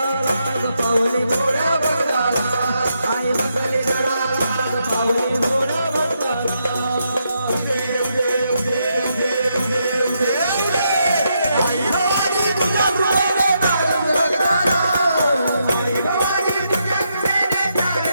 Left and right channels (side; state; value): both; inverted; correlation -0.80